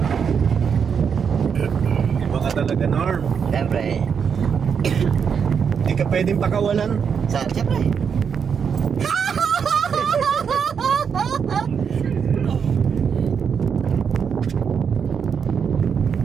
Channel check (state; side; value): quieter; left; 6.8 dB